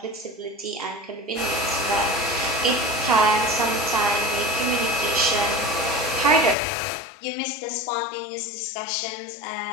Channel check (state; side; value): drops out; right; at 6.6 s